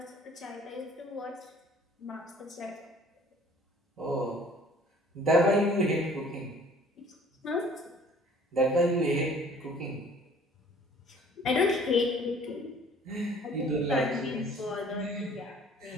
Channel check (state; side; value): normal; both; correlation 0.53